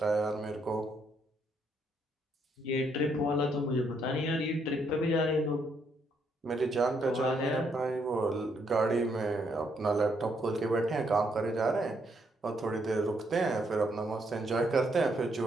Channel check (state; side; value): normal; both; correlation 0.73